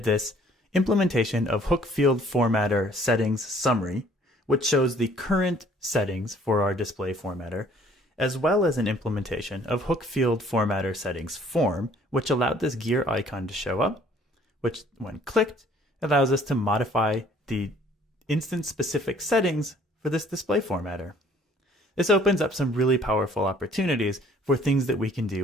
this implementation of hook field formatter settings summary, which shows the current settings for our display formatter, as well as an implementation of hook field formatter settings form, which allowed this gear icon to show up, which when clicked allows us to modify the instance specific settings for this display formatter. This opens up some really powerful opportunities for things that we can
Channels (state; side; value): normal; both; correlation 0.58